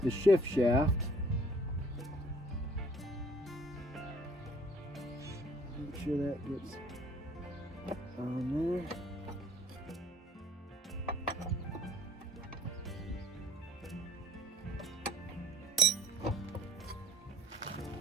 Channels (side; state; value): both; normal; correlation 0.56